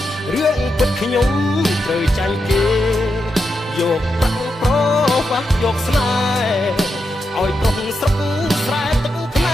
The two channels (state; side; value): normal; both; correlation 0.85